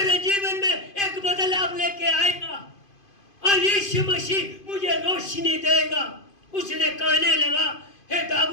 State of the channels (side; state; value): right; late; 2.5 ms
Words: जीवन में एक बदलाव लेके आएगा, और यीशु मसीह मुझे रोशनी देगा। उसने कहने लगा, हे